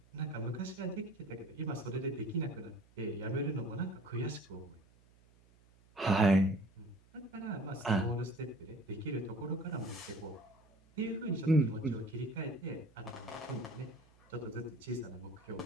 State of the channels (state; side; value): noise; right; hum, 28 dB below the sound